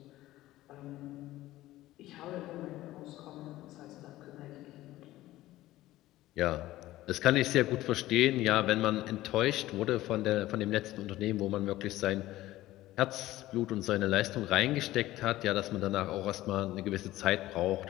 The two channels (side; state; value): right; quieter; 16.0 dB